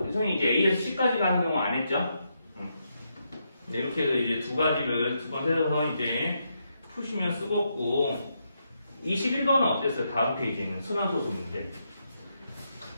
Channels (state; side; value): inverted; both; correlation -0.81